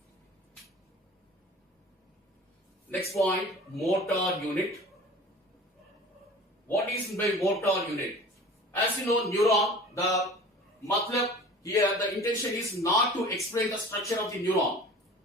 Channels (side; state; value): both; normal; correlation 0.42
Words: Next point, motor unit. What is by motor unit? As you know, neuron, the matlab here, the intention is not to explain the structure of the neuron,